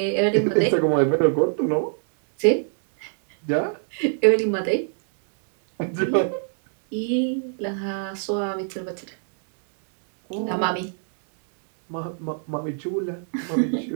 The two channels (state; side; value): silent; left; digital silence